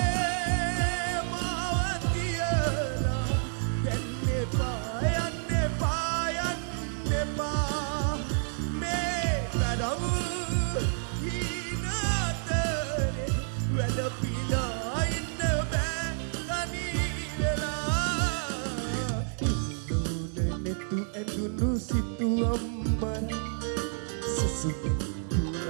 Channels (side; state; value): left; silent; digital silence